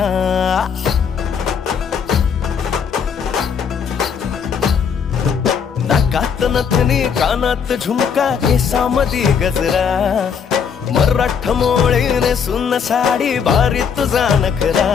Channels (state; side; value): quieter; right; 6.9 dB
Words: नाकात नथनी कानात झुमका केसामध्ये गजरा मराठ मोळीने सुन साडी भारी तुझा नखरा